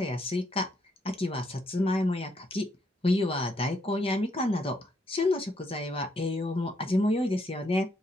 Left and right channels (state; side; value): normal; both; correlation 0.74